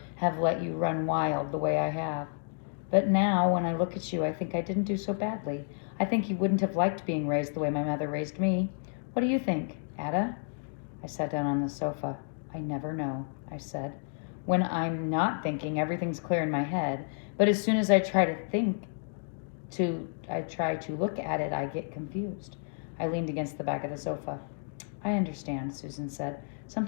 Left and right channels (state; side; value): silent; right; digital silence